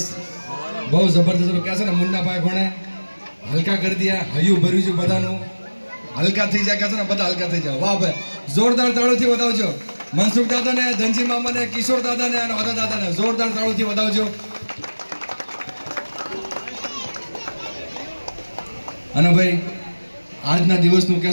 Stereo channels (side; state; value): both; inverted; correlation -1.00